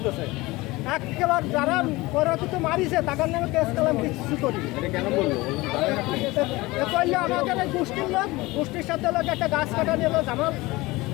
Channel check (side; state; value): right; quieter; 21.1 dB